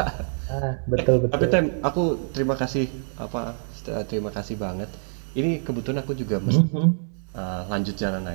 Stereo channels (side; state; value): left; silent; digital silence